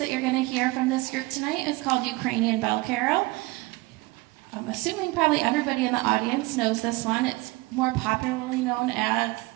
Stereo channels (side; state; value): left; quieter; 22.6 dB